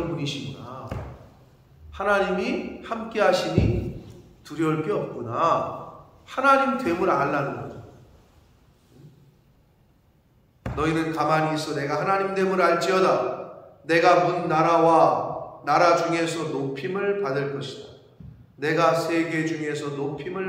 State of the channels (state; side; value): identical; both; correlation 1.00